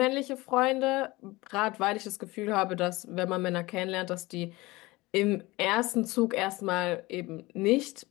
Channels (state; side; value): quieter; right; 21.2 dB